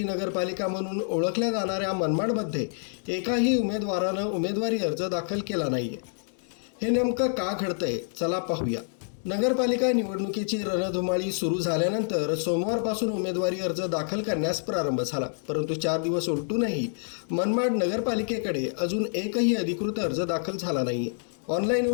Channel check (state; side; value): silent; right; digital silence